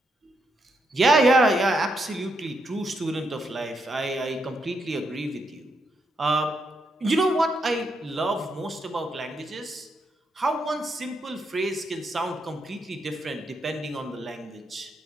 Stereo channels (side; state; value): both; normal; correlation 0.80